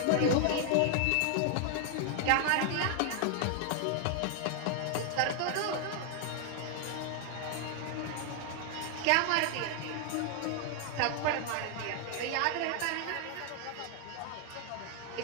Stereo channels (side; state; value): both; different; correlation 0.00